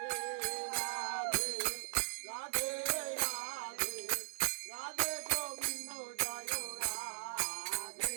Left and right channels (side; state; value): left; silent; digital silence